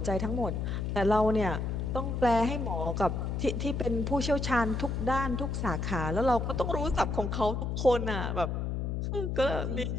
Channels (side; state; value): left; noise; hum, 1 dB below the sound